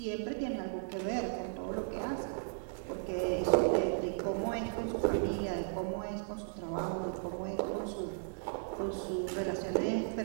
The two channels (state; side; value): silent; left; digital silence